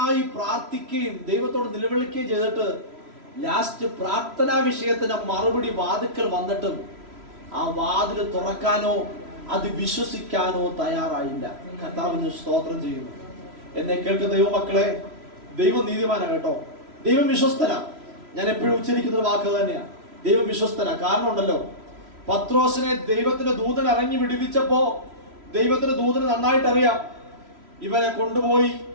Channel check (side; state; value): left; late; 3.0 ms